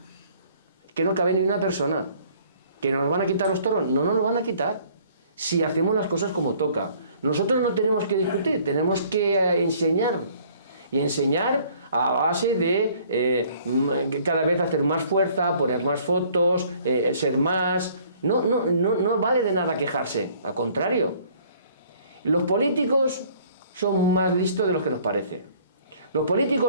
que no cabe ni una persona. ¿Que nos van a quitar los toros? No nos lo van a quitar si hacemos las cosas como toca. Nosotros no tenemos que discutir, tenemos que enseñar. Y enseñar a base de cada vez hacer más fuerza, poner más fotos, ser más. No vale de nada quejarse, al contrario. Los políticos son más listos de lo que nos parece. Los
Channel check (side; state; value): both; inverted; correlation -0.57